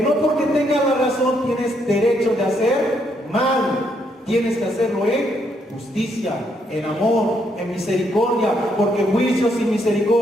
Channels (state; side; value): normal; both; correlation 0.74